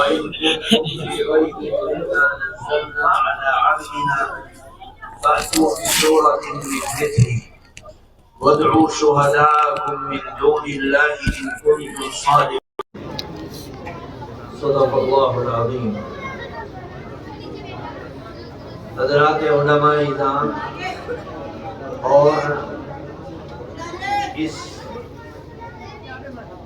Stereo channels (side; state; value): both; identical; correlation 1.00